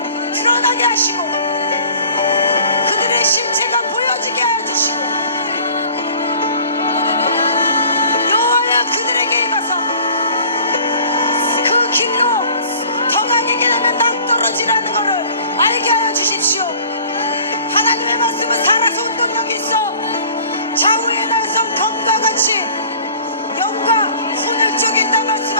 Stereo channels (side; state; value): both; inverted; correlation -0.48